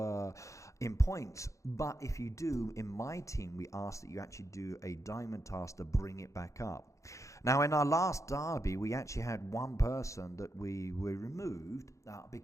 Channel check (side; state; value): right; late; 0.15 ms